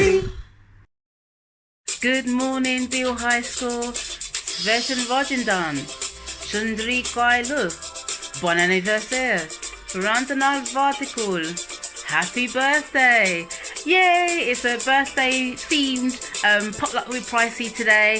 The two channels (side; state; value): both; identical; correlation 1.00